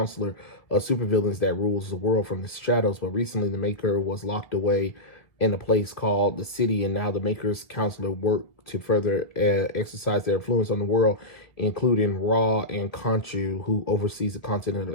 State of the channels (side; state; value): right; late; 1.9 ms